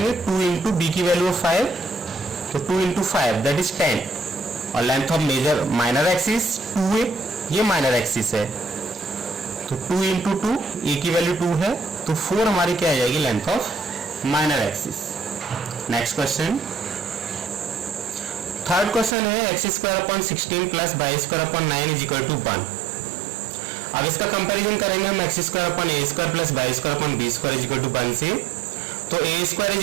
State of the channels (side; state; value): left; drops out; at 19.2 s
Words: 2 इंटू बी की वैल्यू 5, तो 2 इंटू 5 दैट इज 10, और length of major minor axis 2a, ये माइनर एक्सिस है, तो 2 इंटू 2, ए की वैल्यू 2 है, तो 4 हमारी क्या आ जाएगी length of minor axis. Next question, third question है X square upon 16 plus Y square upon 9 is equal to 1। अब इसका कंपैरिजन करेंगे हम X square upon A square plus Y square upon B square is equal to 1 से, तो A square is